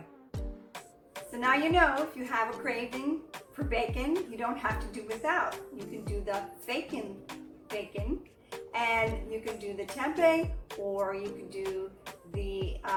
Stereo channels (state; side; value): identical; both; correlation 1.00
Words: So now you know if you have a craving for bacon, you don't have to do without. You can do the Fakin bacon, and you can do the tempeh, or you can do the